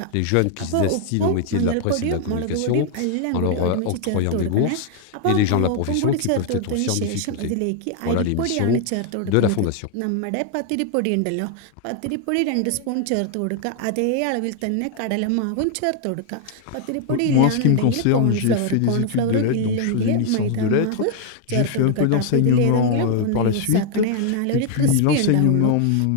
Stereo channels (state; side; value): different; both; correlation 0.00